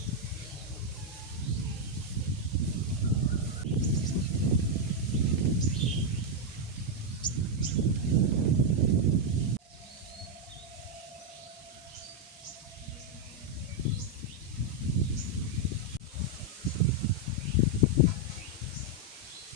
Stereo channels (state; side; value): normal; both; correlation -0.01